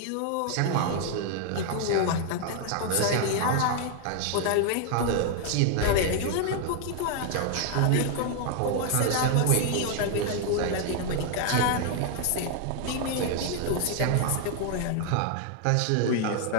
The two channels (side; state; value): both; different; correlation 0.00